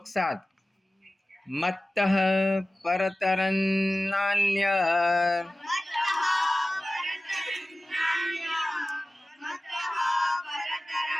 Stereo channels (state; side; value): normal; both; correlation 0.96